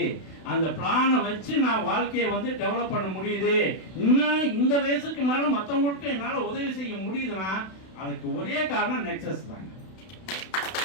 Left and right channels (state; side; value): late; right; 32 ms